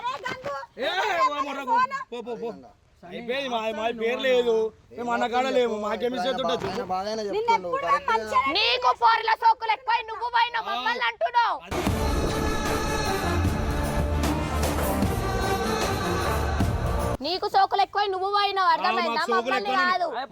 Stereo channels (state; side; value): identical; both; correlation 1.00